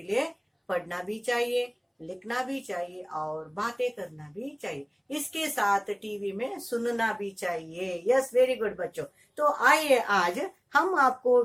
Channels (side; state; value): both; identical; correlation 1.00